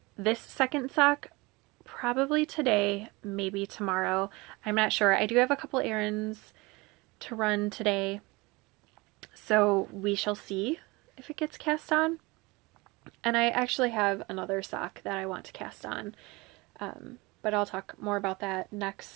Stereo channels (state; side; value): quieter; left; 23.9 dB